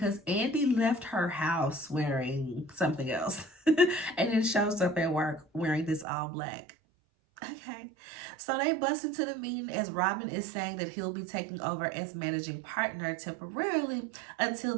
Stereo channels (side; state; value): left; drops out; at 6.1 s